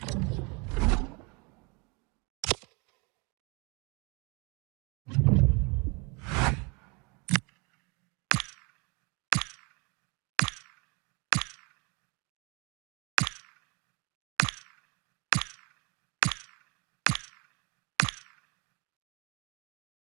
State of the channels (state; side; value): quieter; left; 30.5 dB